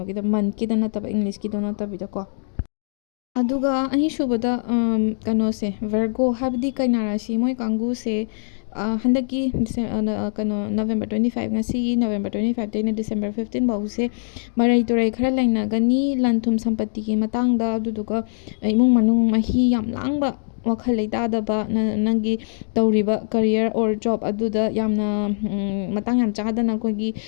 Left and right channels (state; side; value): silent; right; digital silence